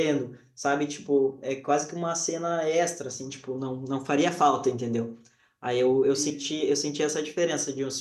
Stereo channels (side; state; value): both; identical; correlation 1.00